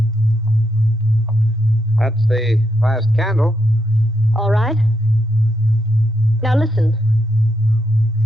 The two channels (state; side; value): normal; both; correlation 0.81